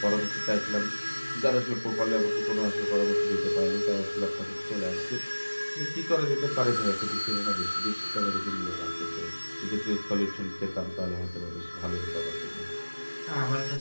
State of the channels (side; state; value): both; inverted; correlation -1.00